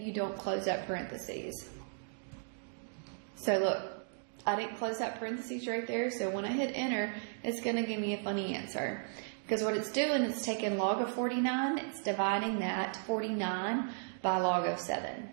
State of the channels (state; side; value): silent; left; digital silence